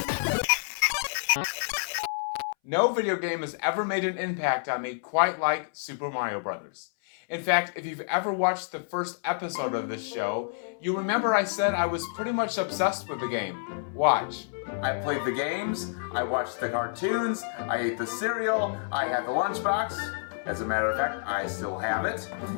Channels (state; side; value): silent; right; 59 dB below the other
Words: No video game has ever made an impact on me quite like Super Mario Bros. In fact, if you've ever watched the first episode of this show, you remember I said I was pretty much obsessed with the game. Watch. I played the games, I watched the cartoons, I ate the cereal, I had the lunchbox. As a matter of fact, I still have it.